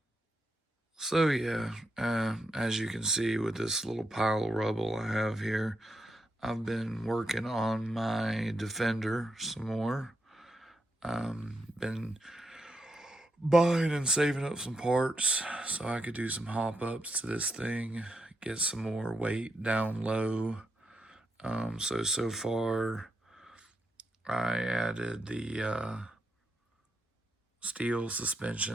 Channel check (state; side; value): normal; both; correlation 0.83